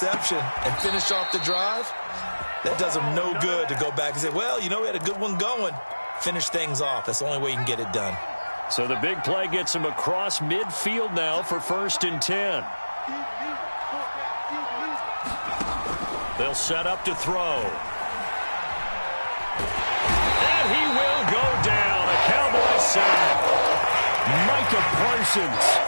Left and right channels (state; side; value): inverted; both; correlation -1.00